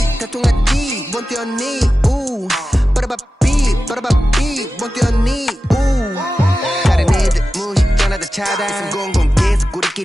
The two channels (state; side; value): normal; both; correlation 0.93